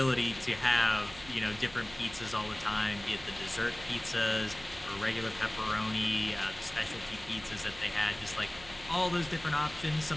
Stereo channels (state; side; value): noise; right; hum, 18 dB below the sound